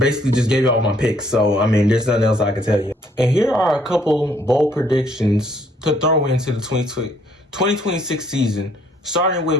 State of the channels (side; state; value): both; normal; correlation 0.65